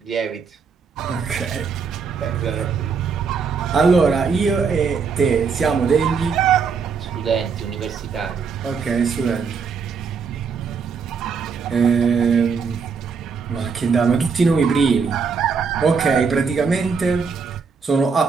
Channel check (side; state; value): left; quieter; 5.6 dB